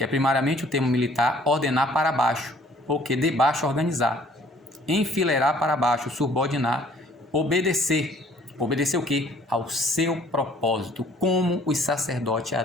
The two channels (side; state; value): both; normal; correlation 0.57